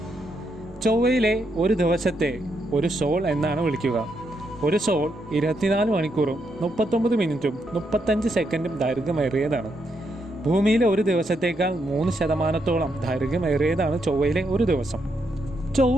ചൊവ്വയിലെ ഒരു ദിവസത്തെ ഒരു സോൾ എന്നാണ് വിളിക്കുക. ഒരു സോൾ 24 മണിക്കൂറും 39 മിനിറ്റും 35 സെക്കൻഡും ദൈർഘ്യമേറിയതാണ്. ഭൂമിയിലെ ഒരു ദിവസത്തേക്കാൾ 3% ദൈർഘ്യമേറിയതാണ് ചൊവ്വയിലെ ഒരു ദിവസം.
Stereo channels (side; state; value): both; normal; correlation 0.79